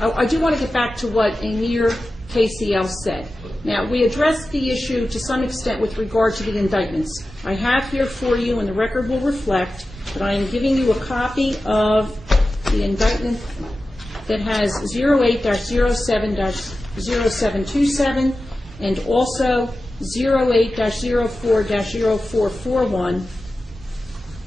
I do want to get back to what Amir KCL said. Now, we addressed the issue to some extent with regard to the indictments. I have here for you, and the record will reflect, that I am giving you a copy of the indictment that has 08-07-0727 and also 08-04-0441.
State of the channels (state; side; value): normal; both; correlation 0.94